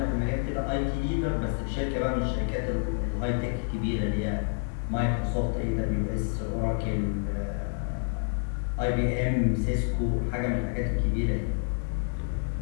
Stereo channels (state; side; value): silent; right; 59 dB below the other